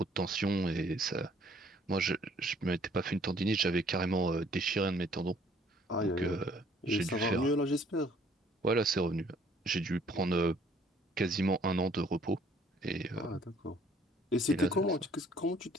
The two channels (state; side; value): normal; both; correlation 0.60